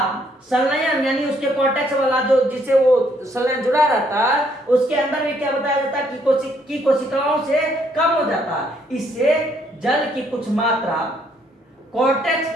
संलयन, यानी उसके कॉर्टेक्स वाला जो जिससे वो संलयन जुड़ा रहता है उसके अंदर भी क्या बताया जाता है कि कोशिकाओं से कम हो जाता है। इससे जल की कुछ मात्रा कॉर्टेक्स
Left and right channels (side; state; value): both; normal; correlation 0.69